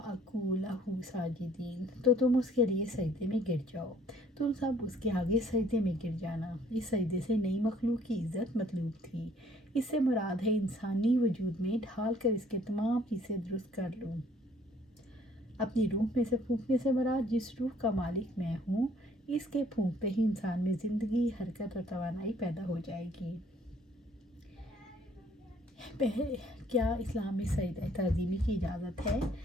لَهُ سَاجِدِينَ، تو تم اس کے لیے سجدے میں گر جاؤ، تم سب اس کے آگے سجدے میں گر جانا۔ اس سجدے سے نئی مخلوق کی عزت مطلوب تھی، اس سے مراد ہے انسانی وجود میں ڈھال کر اس کے تمام حصے درست کر لوں۔ اپنی روح میں سے پھونکنے سے مراد جس روح کا مالک میں ہوں، اس کے پھونکتے ہی انسان میں زندگی، حرکت اور توانائی پیدا ہو جائے گی۔ کیا اسلام میں سجدہ تعظیمی کی اجازت ہے؟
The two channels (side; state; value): both; normal; correlation 0.59